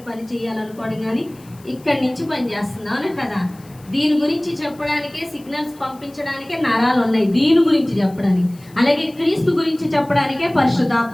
పని చేయాలనుకోవడం కానీ ఇక్కడి నుంచి పని చేస్తుంది. అవునా కదా? దీని గురించి చెప్పడానికే సిగ్నల్స్ పంపించడానికే నరాలు ఉన్నాయి. దీని గురించి చెప్పడానికి. అలాగే క్రీస్తు గురించి చెప్పడానికే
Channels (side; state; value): left; noise; hiss, 26 dB below the sound